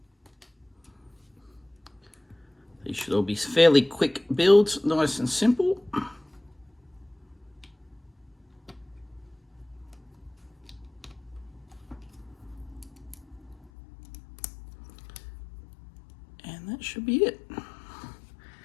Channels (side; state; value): right; drops out; at 13.7 s